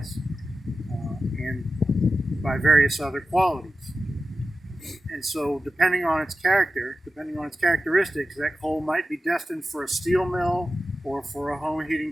and by various other qualities. And so depending on its characteristics, that coal might be destined for a steel mill or for a home heating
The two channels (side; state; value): both; normal; correlation 0.93